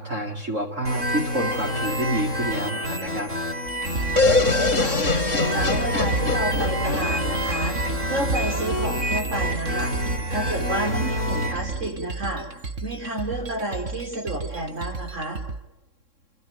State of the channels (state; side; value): late; left; 3.6 ms